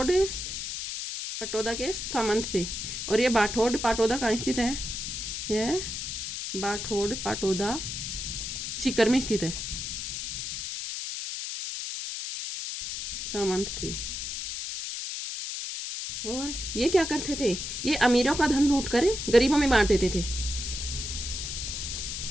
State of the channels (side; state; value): left; noise; hiss, 5 dB below the sound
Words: पटोदा के सामंत थे, और ये बाठोड पाटोदा कहाँ स्थित है? यह बाठोड पाटोदा सीकर में स्थित है। सामंत थे। और ये क्या करते थे? ये अमीरों का धन लूट कर गरीबों में बांट देते थे।